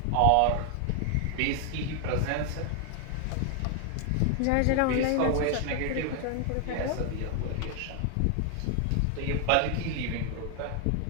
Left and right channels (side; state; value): both; different; correlation 0.00